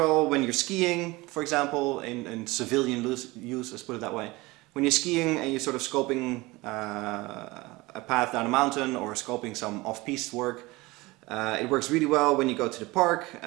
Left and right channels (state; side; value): quieter; left; 21.8 dB